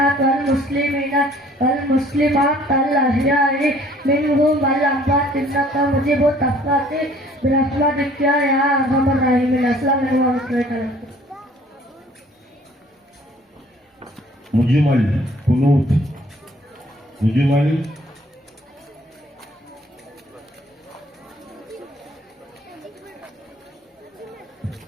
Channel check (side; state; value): both; normal; correlation 0.56